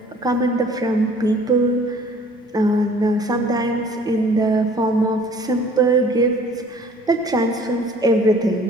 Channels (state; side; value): normal; both; correlation 0.52